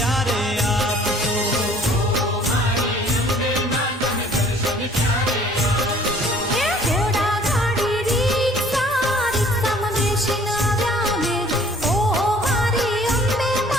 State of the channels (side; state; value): both; normal; correlation 0.54